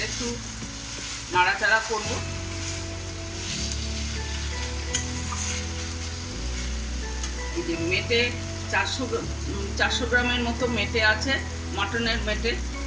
একটু নাড়াচাড়া করবো। যে মেটে 400 গ্রামের মতো মেটে আছে, মাটনের মেটে,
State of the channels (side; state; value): both; identical; correlation 1.00